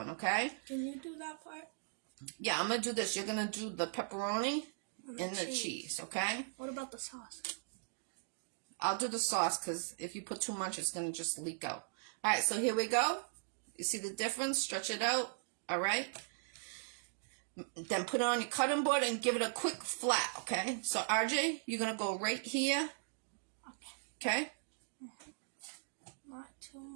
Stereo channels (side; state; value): left; silent; digital silence